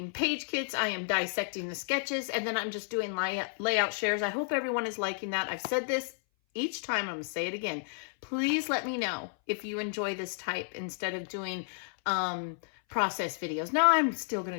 page kits, I am dissecting the sketches, and then I'm just doing layout shares. I hope everyone is liking that. I've said this each time, I'm going to say it again. Please let me know if you enjoy this type instead of doing process videos. Now, I'm still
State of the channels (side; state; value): right; silent; 57 dB below the other